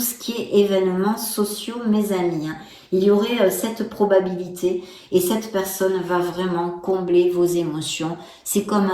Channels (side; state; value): both; identical; correlation 1.00